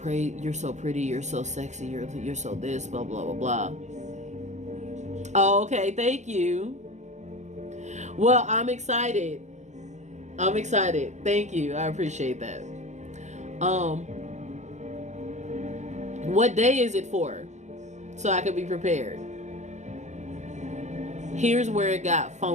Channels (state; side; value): late; left; 0.34 ms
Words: you're so sexy, you're so this, blah, blah, blah, blah. Oh, okay, thank you. Well, I'm excited. Thank you. I appreciate that. What day is it for? So I could be prepared. Here's where it got